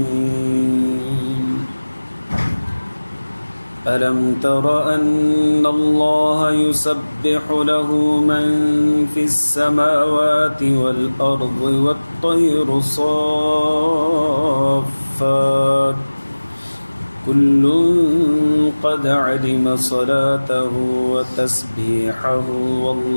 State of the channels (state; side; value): inverted; both; correlation -1.00